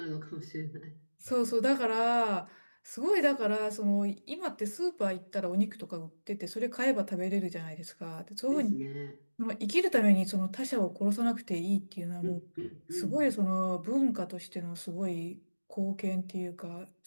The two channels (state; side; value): inverted; both; correlation -1.00